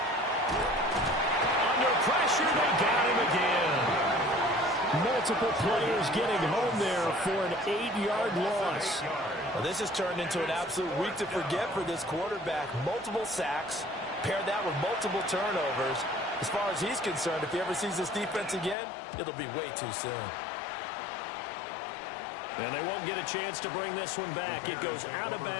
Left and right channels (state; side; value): drops out; right; at 18.8 s